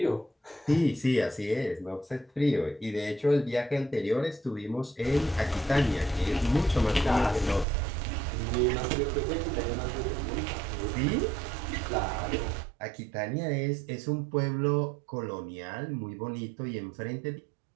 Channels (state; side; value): drops out; left; at 7.7 s